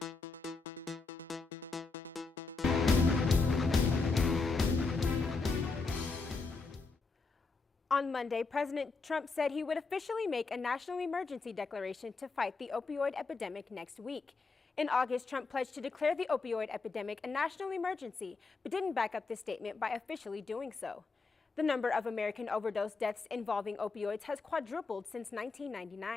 On Monday, President Trump said he would officially make a national emergency declaration to fight the opioid epidemic next week. In August, Trump pledged to declare the opioid epidemic a national emergency, but didn't back up this statement by officially doing so. The number of American overdose deaths involving opioids has quadrupled since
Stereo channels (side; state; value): right; quieter; 4.1 dB